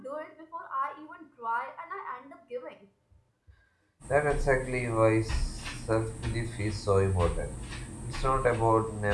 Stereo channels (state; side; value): identical; both; correlation 1.00